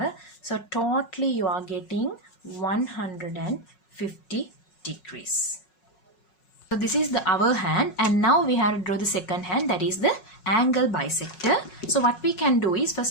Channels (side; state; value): right; late; 5.4 ms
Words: So totally you are getting 150 degrees. So this is the our hand, and now we have to draw the second hand, that is the angle bisector. So what we can do is,